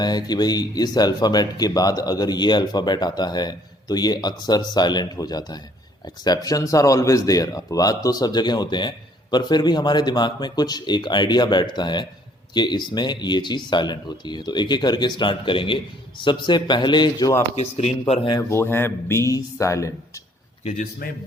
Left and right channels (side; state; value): both; normal; correlation 0.62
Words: है कि भाई इस अल्फ़ाबेट के बाद अगर ये अल्फ़ाबेट आता है तो ये अक्सर साइलेंट हो जाता है। एक्सेप्शंस आर ऑलवेज देयर, अपवाद तो सब जगह होते हैं, पर फिर भी हमारे दिमाग में कुछ एक आइडिया बैठता है कि इसमें ये चीज़ साइलेंट होती है। तो एक एक करके स्टार्ट करेंगे। सबसे पहले जो आपकी स्क्रीन पर है वो है बी साइलेंट, कि